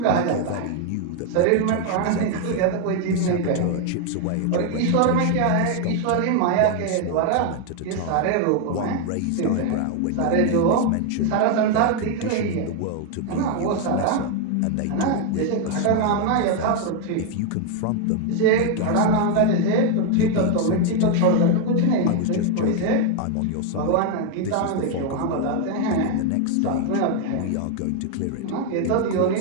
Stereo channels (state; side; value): different; both; correlation 0.01